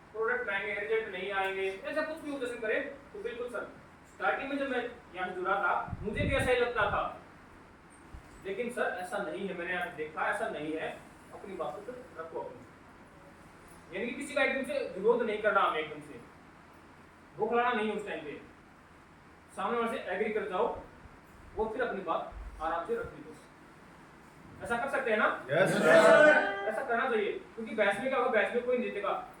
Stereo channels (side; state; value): both; identical; correlation 1.00